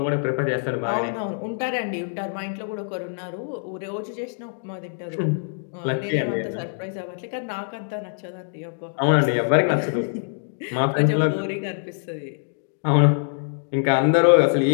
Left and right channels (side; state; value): right; silent; digital silence